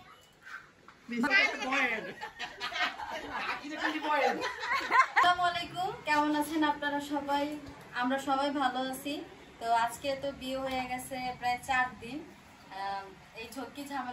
আসসালামু আলাইকুম, কেমন আছেন আপনারা সবাই? আমরা সবাই ভালো আছি। তো আজকে তো বিয়ে হয়ে গেছে প্রায় 4 দিন। এই ঝক্কি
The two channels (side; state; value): both; identical; correlation 1.00